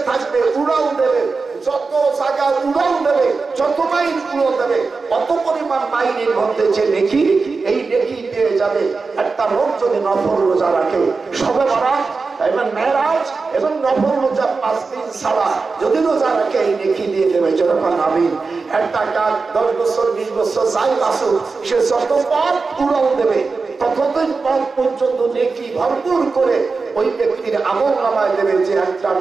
থাকবে উড়াল দেবে যত জায়গা উড়াল দেবে যত মাইল উড়াল দেবে অত পরিমাণ মাইলের মধ্যে যে নেকি এই নেকি পেয়ে যাবে একটা লোক যদি নফল রোজা রাখে সবে বরাত এবং মেরাজ এবং নফল রোজা 5 দিন ছাড়া যদি রোজা রাখে এই নেকি দিয়ে দেবে যখন আমিন একটা কাজ 10 বছর 20 বছর যাই বাসুক সে যত পথ উড়াল দেবে ততদিন পথ পর্যন্ত নেকি ভরপুর করে ওই ব্যক্তির আমল নামায় দেবে যে একটা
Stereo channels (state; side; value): quieter; left; 4.3 dB